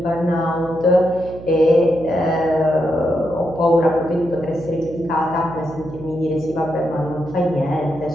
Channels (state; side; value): noise; right; hum, 14 dB below the sound